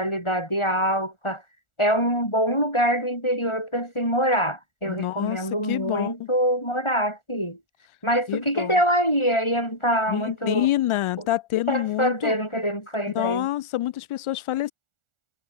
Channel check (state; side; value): late; right; 1.4 ms